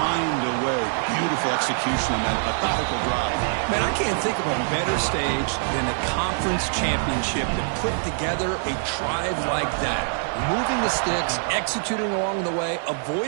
away. Beautiful execution on that methodical drive. Man, I can't think of a better stage than the conference championship to put together a drive like that. Moving the sticks, executing along the way,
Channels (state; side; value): silent; left; 60 dB below the other